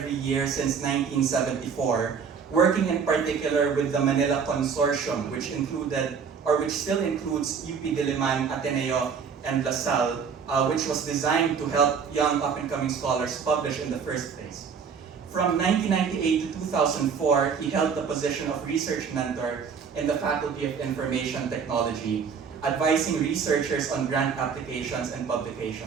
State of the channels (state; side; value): quieter; left; 6.3 dB